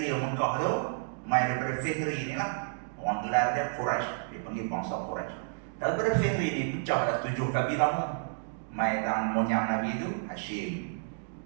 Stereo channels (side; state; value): left; silent; digital silence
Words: Mekah tu, mai daripada Fihri ni lah, orang gelar dia Quraisy, dia panggil bangsa Quraisy. Daripada Fihri ni pecah dah 7 kabilah tu. Mai tang moyang Nabi tu Hashim,